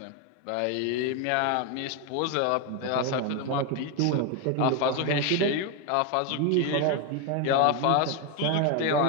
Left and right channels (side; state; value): both; different; correlation 0.02